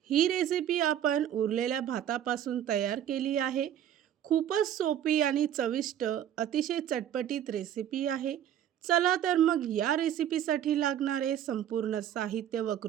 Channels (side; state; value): left; quieter; 10.5 dB